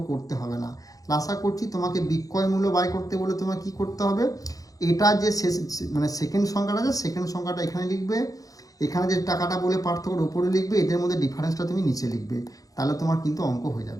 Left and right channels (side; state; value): right; late; 0.17 ms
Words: করতে হবে না। আশা করছি তোমাকে বিক্রয় মূল্য বাই করতে বলে তোমার কি করতে হবে, এটা যে শেষ মানে সেকেন্ড সংখ্যাটা আছে, সেকেন্ড সংখ্যাটা এখানে লিখবে, এখানে যে টাকাটা বলে পার্থক্যের উপরে লিখবে, এদের মধ্যে ডিফারেন্সটা তুমি নিচে লিখবে, তাহলে তোমার কিন্তু অঙ্ক হয়ে